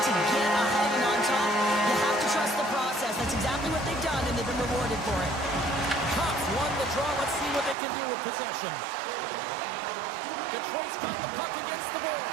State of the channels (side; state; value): left; drops out; at 7.8 s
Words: to get ahead and on top, you have to trust the process. That's exactly what they've done, and they've been rewarded for it. Cops won the draw. Let's see what they can do with possession. Detroit's got the puck against the